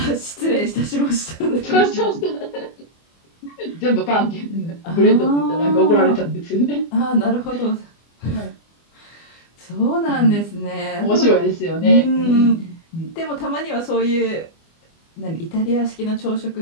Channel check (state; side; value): late; right; 24 ms